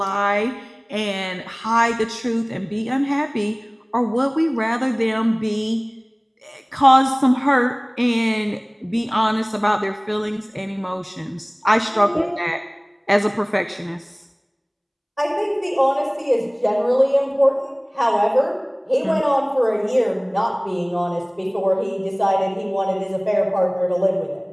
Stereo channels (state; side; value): identical; both; correlation 1.00